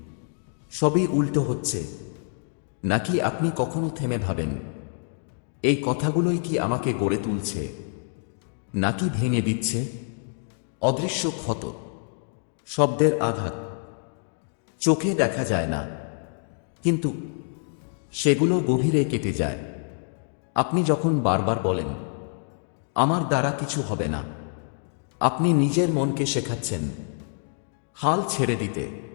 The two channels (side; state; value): right; silent; 61 dB below the other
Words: সবই উল্টো হচ্ছে। নাকি আপনি কখনো থেমে ভাবেন, এই কথাগুলোই কি আমাকে গড়ে তুলছে, নাকি ভেঙে দিচ্ছে? অদৃশ্য ক্ষত, শব্দের আঘাত, চোখে দেখা যায় না, কিন্তু সেগুলো গভীরে কেটে যায়। আপনি যখন বারবার বলেন, আমার দ্বারা কিছু হবে না, আপনি নিজের মনকে শেখাচ্ছেন হাল ছেড়ে দিতে।